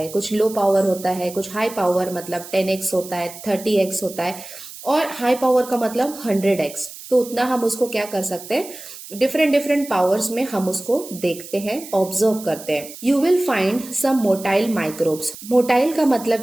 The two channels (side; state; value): right; noise; hiss, 15 dB below the sound